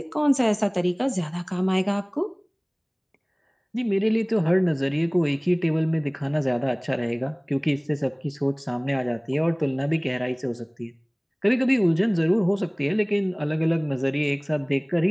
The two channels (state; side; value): identical; both; correlation 1.00